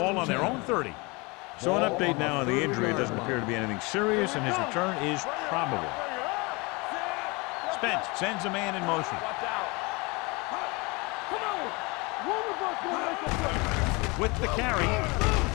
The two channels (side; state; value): right; quieter; 26.8 dB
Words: on their own 30. So an update now on the injury. It doesn't appear to be anything serious, and his return is probable. Spence sends a man in motion. Watch out. Come on. One of us will make a play. With the carry,